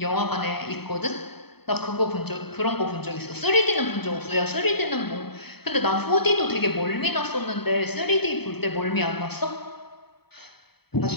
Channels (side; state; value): right; late; 0.97 ms